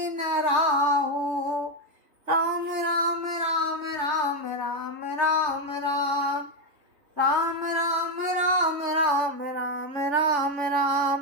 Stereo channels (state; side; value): late; left; 3.4 ms